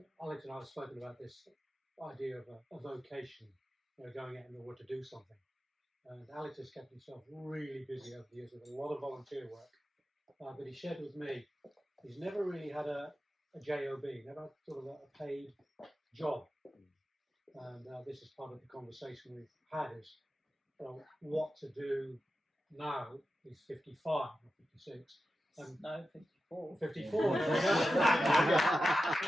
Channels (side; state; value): both; normal; correlation 0.92